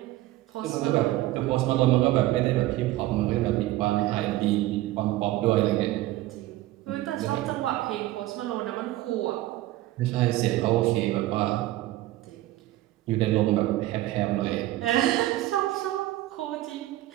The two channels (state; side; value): quieter; left; 16.2 dB